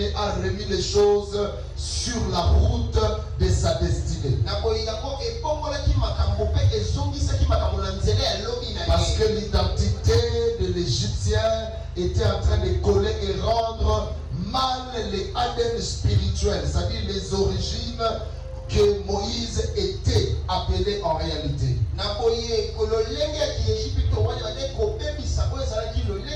a remis les choses sur la route de sa destinée. Parce que l'identité de l'Égyptien était en train de coller et rendre mal les ADN spirituels, c'est-à-dire les origines que Moïse était appelé en réalité.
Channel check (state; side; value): identical; both; correlation 1.00